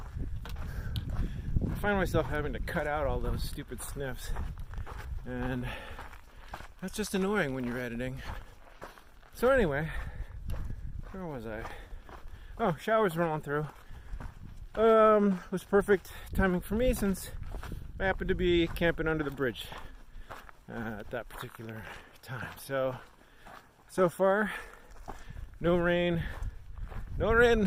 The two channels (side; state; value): both; identical; correlation 1.00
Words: I find myself having to cut out all those stupid sniffs, and that's just annoying when you're editing. So anyway, where was I? Oh, showers rolling through. Was perfect timing for me since I happened to be camping under the bridge at that particular time. So far, no rain